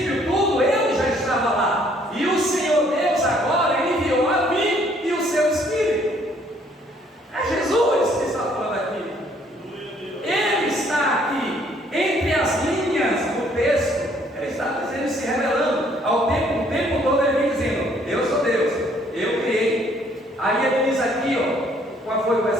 tudo ele já estava lá, e o Senhor Deus agora enviou a mim e o seu Espírito. É Jesus que está falando aqui. Ele está aqui entre as linhas do texto. É isso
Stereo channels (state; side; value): normal; both; correlation 0.63